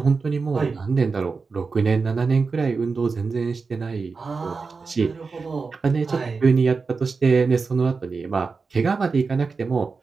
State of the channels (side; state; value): left; quieter; 4.6 dB